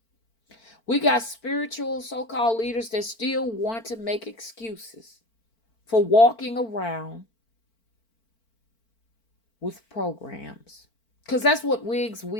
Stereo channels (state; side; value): late; right; 4.5 ms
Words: We got spiritual so-called leaders that still want to make excuses for walking around with programs. Because that's what wigs,